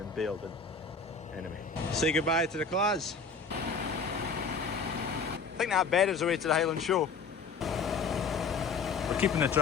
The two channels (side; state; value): right; quieter; 4.9 dB